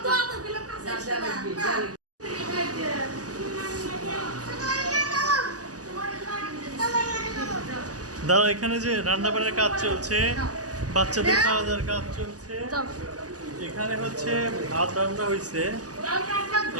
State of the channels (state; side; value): late; left; 0.67 ms